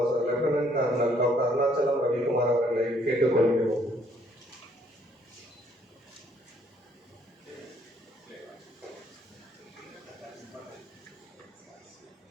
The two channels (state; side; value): normal; both; correlation 0.65